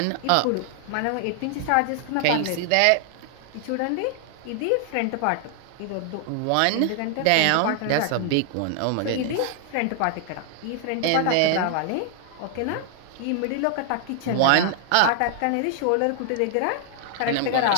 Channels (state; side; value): different; both; correlation 0.00